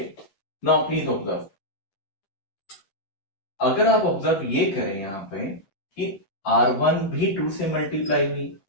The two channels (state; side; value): late; right; 10 ms